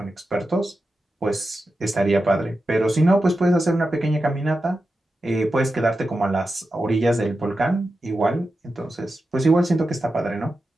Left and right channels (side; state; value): both; normal; correlation 0.91